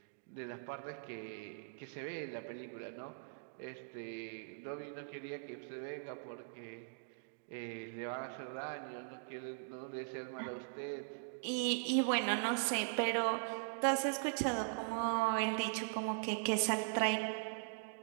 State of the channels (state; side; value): silent; left; digital silence